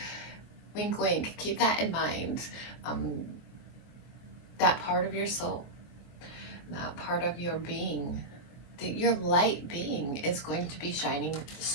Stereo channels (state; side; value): late; right; 23 ms